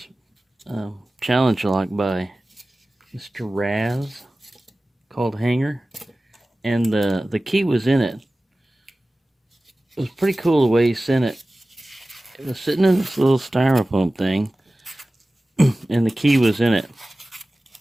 challenge lock by Mr. Raz called Hanger, and the key was in it. It was pretty cool the way he sent it. It was sitting in this little styrofoam thing, and the key was in it.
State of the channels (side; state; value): both; normal; correlation 0.97